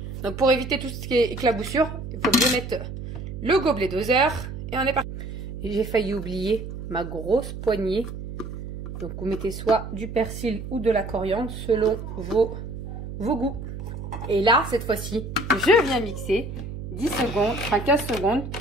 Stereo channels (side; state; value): right; noise; hum, 8 dB below the sound